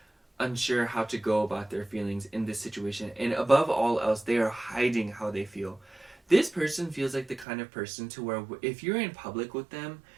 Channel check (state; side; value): drops out; left; at 7.5 s